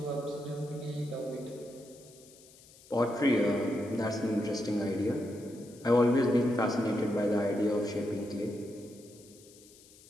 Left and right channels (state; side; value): noise; left; hiss, 24 dB below the sound